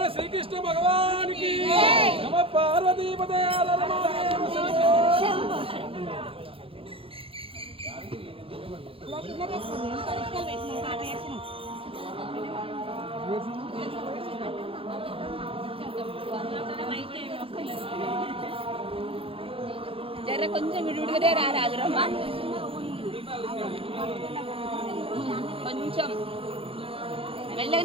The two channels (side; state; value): left; late; 0.27 ms